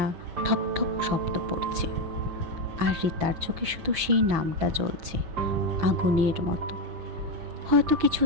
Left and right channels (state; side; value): late; left; 6.2 ms